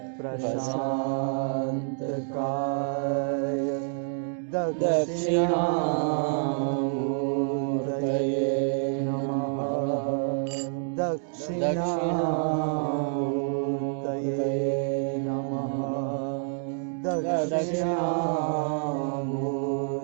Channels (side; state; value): left; silent; digital silence